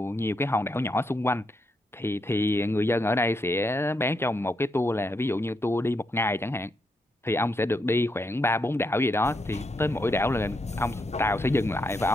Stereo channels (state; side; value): normal; both; correlation 0.80